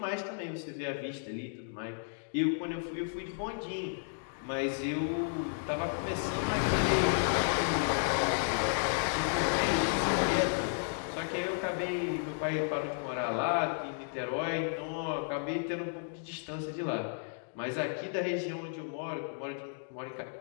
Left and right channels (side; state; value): right; silent; digital silence